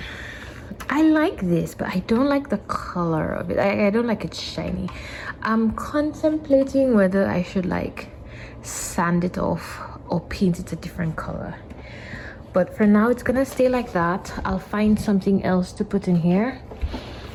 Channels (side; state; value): both; identical; correlation 1.00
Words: I like this, but I don't like the color of it. I don't like it shiny. I'm contemplating whether I should like sand it off or paint it a different color, but for now it's gonna stay like that. I'll find something else to put in here,